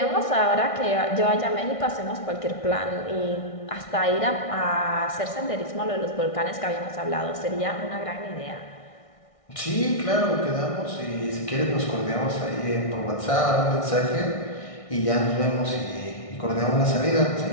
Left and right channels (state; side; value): late; right; 1.6 ms